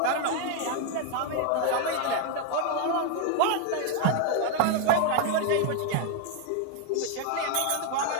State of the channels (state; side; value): different; both; correlation 0.01